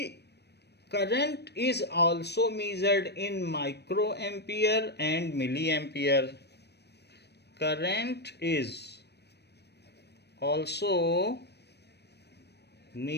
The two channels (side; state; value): right; late; 0.48 ms